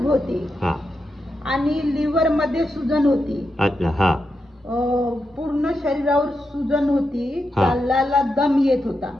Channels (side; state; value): both; normal; correlation 0.86